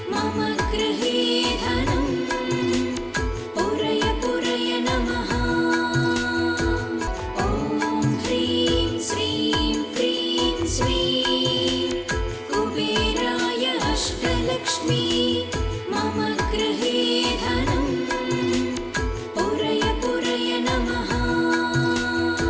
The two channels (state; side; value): identical; both; correlation 1.00